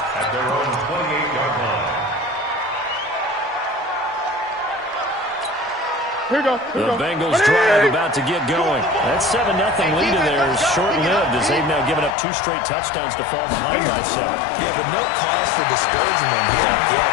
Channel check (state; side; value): drops out; right; at 12.2 s